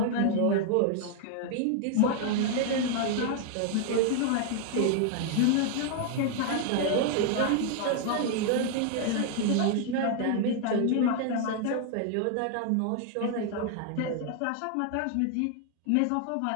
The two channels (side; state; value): both; different; correlation 0.00